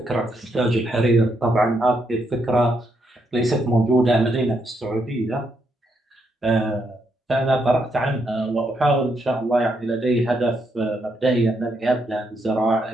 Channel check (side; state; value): both; normal; correlation 0.78